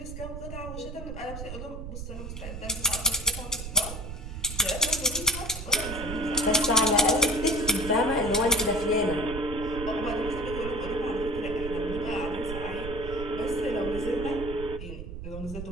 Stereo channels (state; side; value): noise; right; rumble, 8 dB below the sound